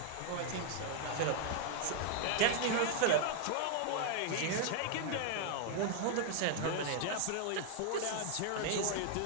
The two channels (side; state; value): both; different; correlation 0.00